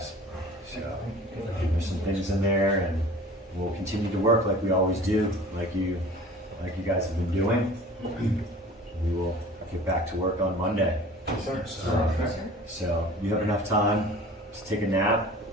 So there's some things in there, and we'll continue to work like we always do, like you guys have been doing. We will get back to work on Monday. So you have enough time to take a nap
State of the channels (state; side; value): normal; both; correlation 0.43